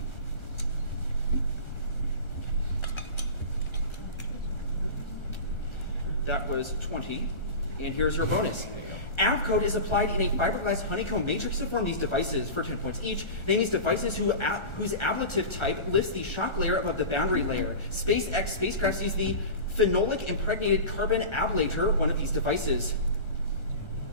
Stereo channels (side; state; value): right; late; 1.4 ms